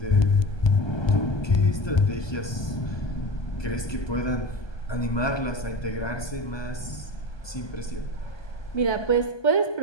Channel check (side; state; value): right; late; 1.2 ms